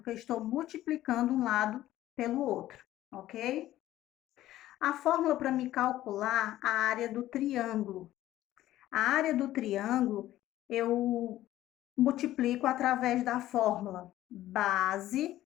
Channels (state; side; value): quieter; right; 14.2 dB